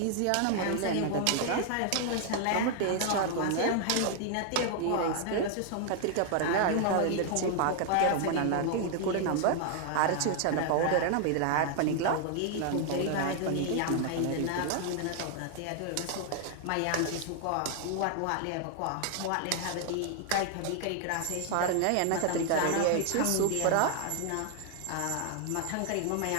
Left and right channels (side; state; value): both; different; correlation 0.00